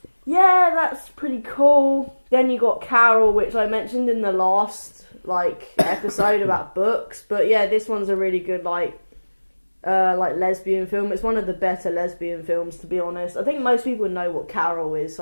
Yeah, that's pretty cool. Then you got Carol, which I mentioned in the last episode about books. But yeah, this one's a really good like lesbian film. It's one of the better lesbian films, to be honest. I think most people know what Carol is,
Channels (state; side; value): inverted; both; correlation -1.00